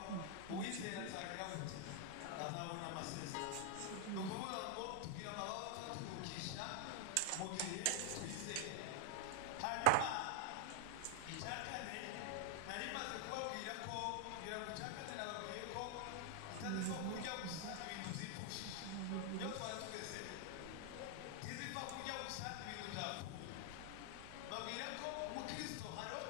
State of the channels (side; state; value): both; different; correlation 0.00